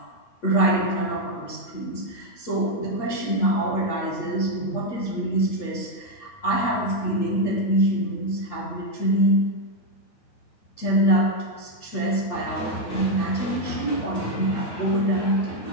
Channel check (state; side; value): late; right; 8.6 ms